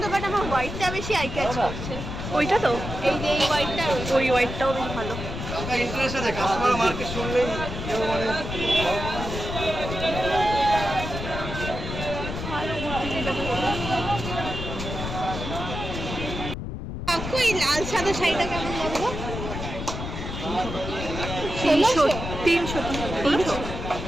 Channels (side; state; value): left; noise; rumble, 6 dB below the sound